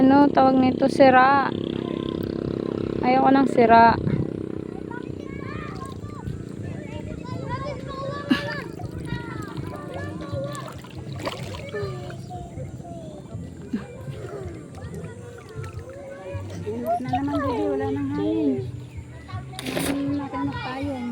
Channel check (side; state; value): both; identical; correlation 1.00